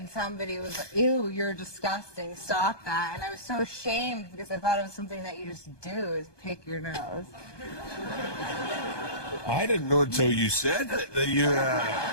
somebody was like, ew, you're disgusting, stop that. And I was so ashamed because I thought it was something that you just do, is pick your nose. I didn't know until you said it that you.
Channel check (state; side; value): late; right; 1.2 ms